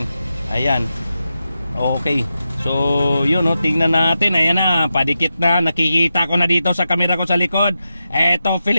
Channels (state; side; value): inverted; both; correlation -0.89